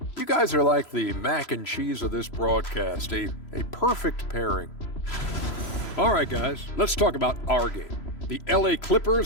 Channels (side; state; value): right; late; 3.0 ms